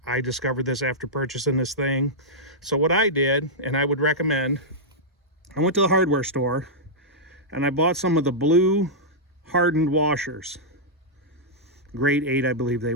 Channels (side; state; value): both; normal; correlation -0.10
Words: I discovered this after purchasing this thing. So what I did, and I would recommend, I went to the hardware store and I bought some of the blue hardened washers, grade 8 I believe they